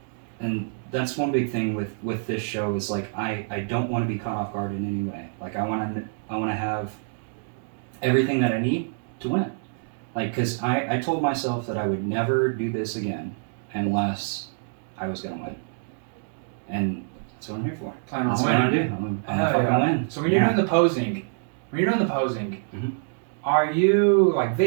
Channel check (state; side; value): silent; left; digital silence